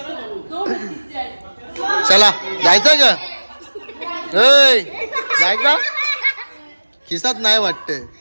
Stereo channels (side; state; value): both; inverted; correlation -1.00